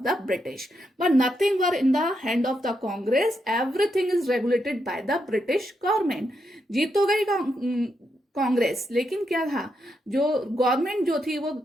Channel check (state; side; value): normal; both; correlation 0.82